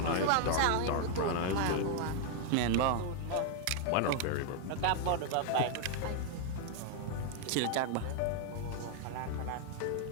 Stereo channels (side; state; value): both; different; correlation 0.00